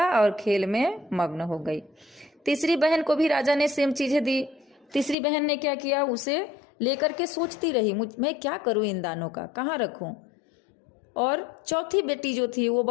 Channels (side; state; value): right; drops out; at 5.2 s